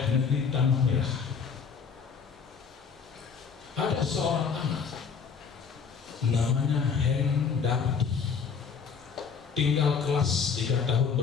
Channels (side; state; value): right; quieter; 6.1 dB